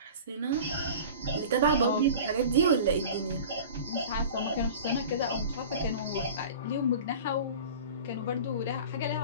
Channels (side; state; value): both; inverted; correlation -0.38